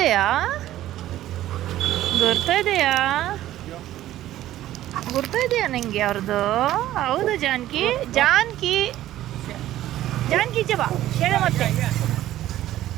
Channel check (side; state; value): left; quieter; 13.8 dB